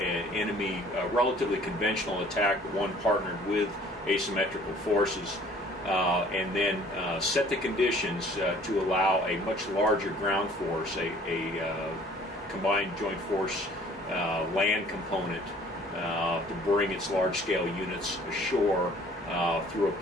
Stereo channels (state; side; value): normal; both; correlation 0.54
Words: enemy relatively conventional attack, but one partnered with asymmetrical forces, and then set the conditions to allow a much larger ground force, a combined joint force land component to bring its large-scale units ashore through a